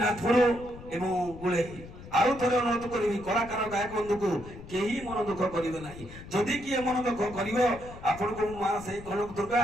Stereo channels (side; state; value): left; noise; rumble, 15 dB below the sound